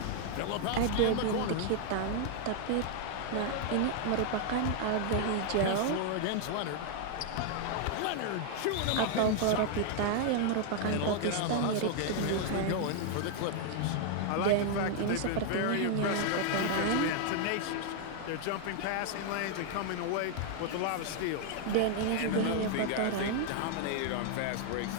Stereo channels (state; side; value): different; both; correlation 0.00